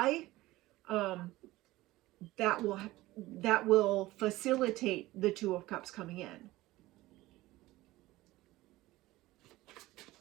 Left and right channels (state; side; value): quieter; left; 18.0 dB